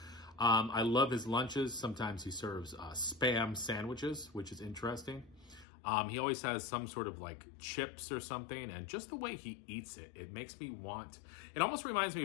I love his lunches. Sometimes he serves Spam sandwiches, which is interesting. He always has some sort of like chips or something, and just the way he eats it, it makes me want, it almost reminds me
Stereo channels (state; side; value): drops out; right; at 5.7 s